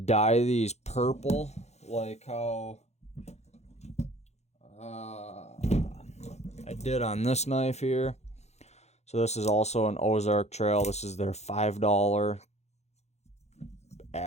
these purple like how I did on this knife here. So this is also an Ozark Trail. This is their $5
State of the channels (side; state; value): right; late; 0.32 ms